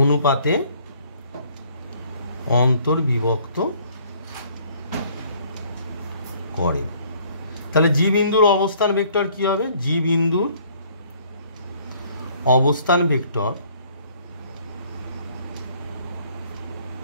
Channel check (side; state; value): both; inverted; correlation -0.60